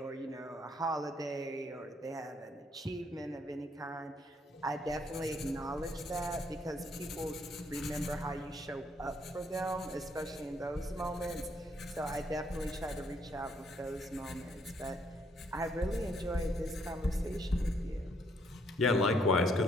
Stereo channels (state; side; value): normal; both; correlation 0.70